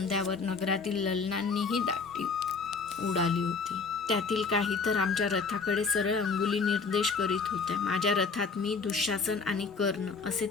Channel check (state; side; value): quieter; right; 4.7 dB